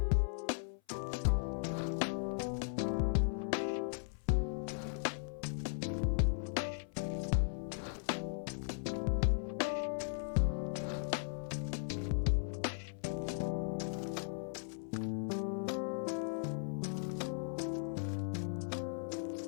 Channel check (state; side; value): silent; right; 53 dB below the other